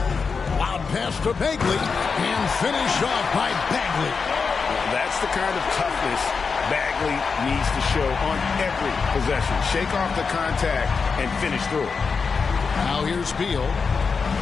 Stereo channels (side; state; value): right; quieter; 5.2 dB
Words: Loud pass to Bagley, and finish off by Bagley. That's the kind of toughness Bagley needs to show on every possession. Shake off the contact and finish through it. Now here's Beal.